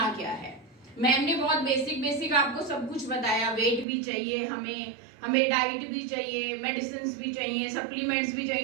क्या है। मैम ने बहुत बेसिक आपको सब कुछ बताया। वेट भी चाहिए हमें डाइट भी चाहिए, मेडिसिन भी चाहिए, सप्लीमेंट्स भी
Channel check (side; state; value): left; drops out; at 3.9 s